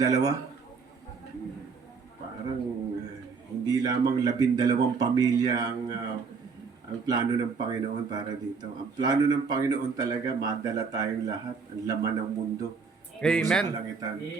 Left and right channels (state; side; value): quieter; left; 5.1 dB